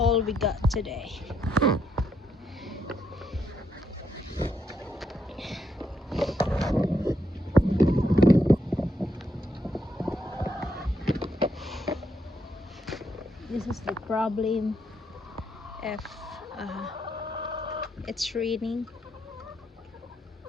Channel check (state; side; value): normal; both; correlation 0.77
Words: we got today. This is the problem if it's raining,